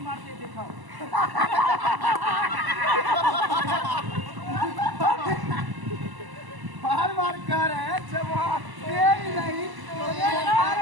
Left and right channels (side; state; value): left; late; 1.0 ms